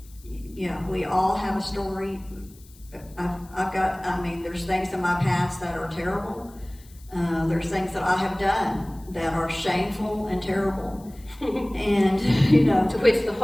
we all have a story. There's things in my past that are terrible. There's things that I have done that are shameful and terrible. And, To which the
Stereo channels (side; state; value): left; noise; hiss, 25 dB below the sound